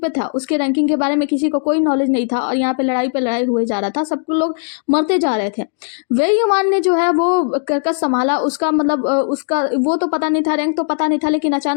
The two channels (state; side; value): silent; right; digital silence